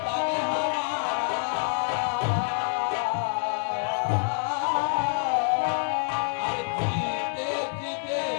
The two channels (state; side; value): silent; right; 60 dB below the other